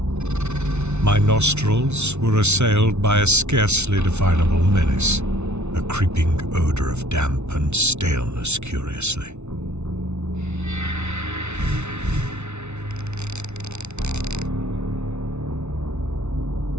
My nostrils were assailed by a scarcely definable menace, a creeping odor of damp and staleness, curiously.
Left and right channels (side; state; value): left; late; 0.82 ms